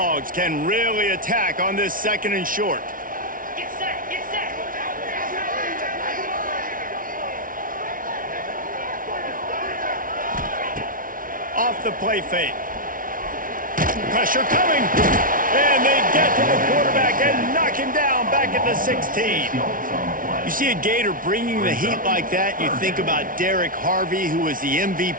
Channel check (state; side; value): late; left; 0.39 ms